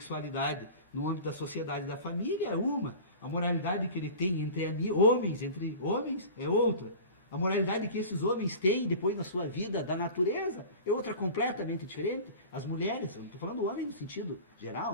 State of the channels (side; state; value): both; inverted; correlation -0.36